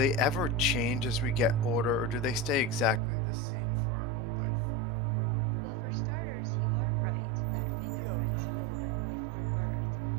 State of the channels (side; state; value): left; drops out; at 3.0 s